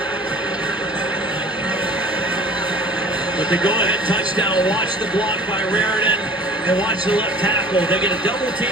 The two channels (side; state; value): both; normal; correlation 0.47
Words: But the go-ahead touchdown. Watch the block by Raritan and watch the left tackle. They get a double